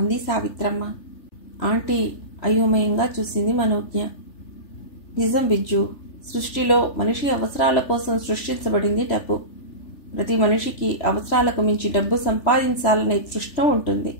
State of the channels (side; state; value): right; late; 3.4 ms